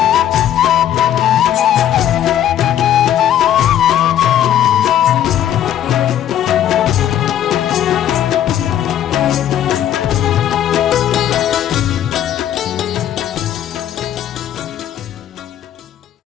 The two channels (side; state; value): right; quieter; 11.0 dB